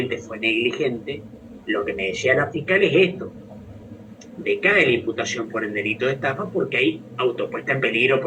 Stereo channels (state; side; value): identical; both; correlation 1.00